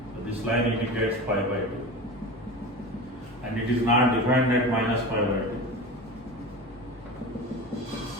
So this line indicates pi by 2. And it is not defined at minus pi by 2.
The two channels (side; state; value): both; normal; correlation 0.30